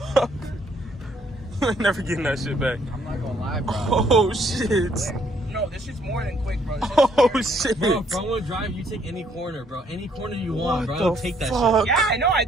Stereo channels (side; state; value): both; normal; correlation 0.67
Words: I'm never getting that shit back. I'm not gonna lie, bro. Oh, shit. No, this shit's more than quick, bro. Oh, shit. Bro, if I want to drive, you take any corner, bro. Any corner you want, What bro. the Take that fuck? Yeah, I know. I